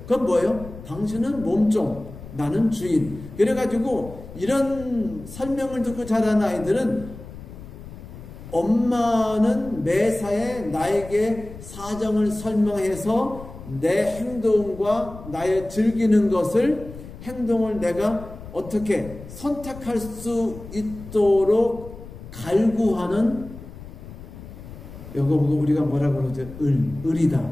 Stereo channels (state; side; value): noise; left; rumble, 15 dB below the sound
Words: 그건 뭐예요? 당신은 몸종, 나는 주인. 그래가지고 이런 설명을 듣고 자란 아이들은 엄마는 매사에 나에게 사정을 설명해서 내 행동과 나의 즐기는 것을, 행동을 내가 어떻게 선택할 수 있도록 갈구하는, 이거 보고 우리가 뭐라 그러죠? 을이다